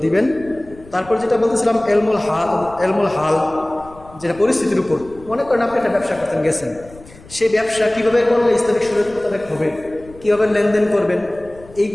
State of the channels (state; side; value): noise; left; rumble, 21 dB below the sound